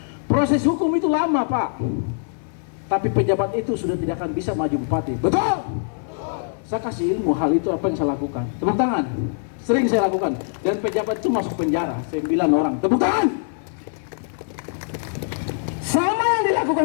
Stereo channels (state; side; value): silent; right; 64 dB below the other